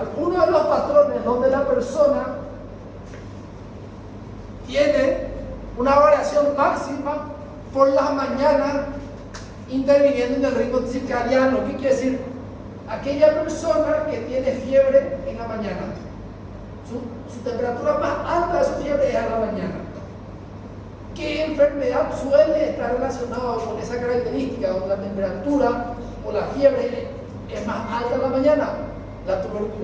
uno de los patrones donde la persona tiene una variación máxima por las mañanas interviniendo en el ritmo circadiano. ¿Qué quiere decir? Aquella persona que tiene fiebre en la mañana, su temperatura más alta de su fiebre es a la mañana. ¿Qué enfermedad suele estar relacionada con esa característica donde la temperatura o la fiebre es más alta en la mañana? La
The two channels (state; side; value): identical; both; correlation 1.00